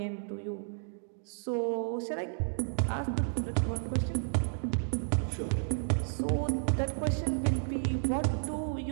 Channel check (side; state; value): left; silent; digital silence